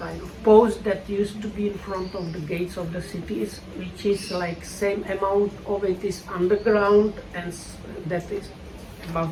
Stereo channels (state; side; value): identical; both; correlation 1.00